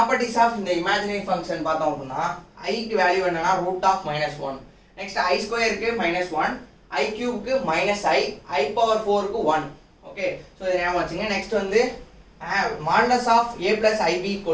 ஆஃப் இந்த இமேஜினரி ஃபங்க்ஷன் பார்த்தோம் அப்படின்னா ஐக்கு வேல்யூ என்னன்னா √(-1). நெக்ஸ்ட் ஐ ஸ்கொயருக்கு -1, ஐ கியூப்க்கு -i பவர் 4க்கு 1. ஓகே, ஸோ இதை ஞாபகம் வச்சுங்க. நெக்ஸ்ட் வந்து modulus of a + ib =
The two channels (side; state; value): both; identical; correlation 1.00